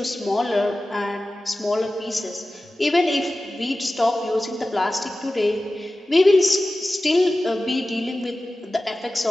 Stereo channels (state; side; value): normal; both; correlation 0.95